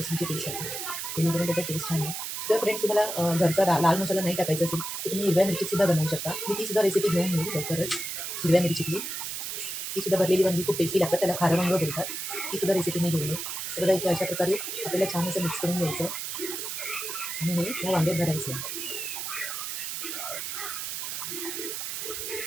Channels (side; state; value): right; noise; hiss, 5 dB below the sound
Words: पेस्ट टाकणार, जेणेकरून त्याचा टेस्ट छान आहे. जर फ्रेंड्स तुम्हाला घरचा लाल मसाला नाही टाकायचा असेल तर तुम्ही हिरव्या मिरचीसुद्धा बनवू शकता. मी तीसुद्धा रेसिपी घेऊन येईल लवकरच. हिरव्या मिरचीतली तीसुद्धा भरलेली वांगी खूप टेस्टी लागतात, त्याला खारं वांगं बोलतात. तीसुद्धा रेसिपी मी घेऊन येईल. तर बघा इथे अशा प्रकारे आपल्याला छान असं मिक्स करून घ्यायचं आणि हे या वांग्यात भरायचं.